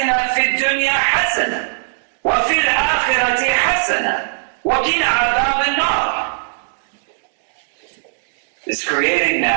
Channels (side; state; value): left; silent; digital silence